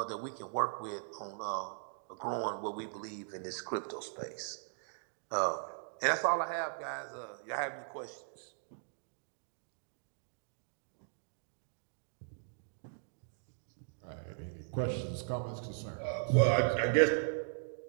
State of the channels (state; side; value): silent; left; digital silence